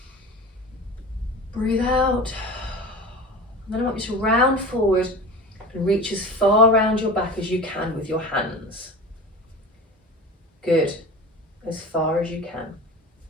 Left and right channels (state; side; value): normal; both; correlation 0.34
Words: Breathe out. And then I want you to round forward and reach as far around your back as you can with your hands. Good. As far as you can.